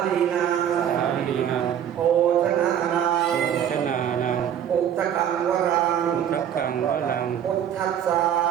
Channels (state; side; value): quieter; left; 9.6 dB